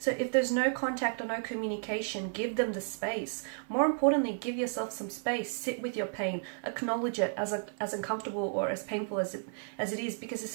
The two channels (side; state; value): left; silent; 56 dB below the other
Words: if there's no contact or no communication, give them the space. More importantly, give yourself some space. Sit with your pain. Acknowledge it as uncomfortable or as painful as it is, because